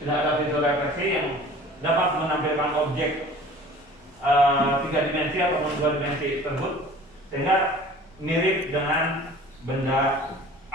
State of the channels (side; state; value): both; normal; correlation 0.45